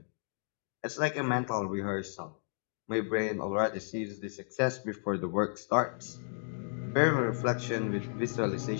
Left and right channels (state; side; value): silent; right; digital silence